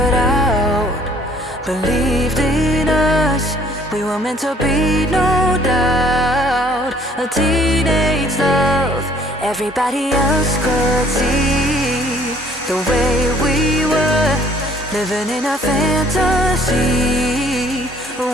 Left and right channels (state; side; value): normal; both; correlation 0.58